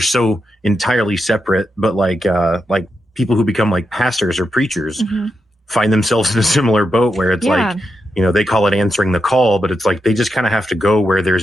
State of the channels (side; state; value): both; normal; correlation 0.85